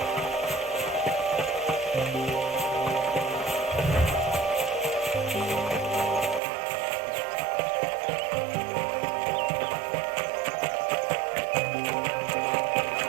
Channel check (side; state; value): left; drops out; at 6.4 s